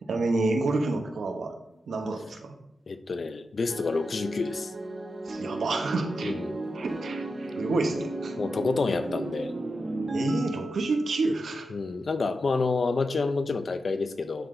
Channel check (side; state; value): both; normal; correlation 0.88